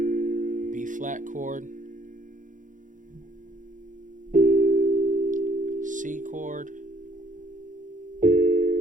B flat chord, C chord,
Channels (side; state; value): left; late; 0.37 ms